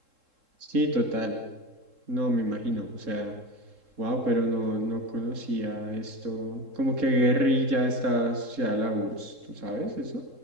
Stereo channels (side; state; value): left; late; 3.7 ms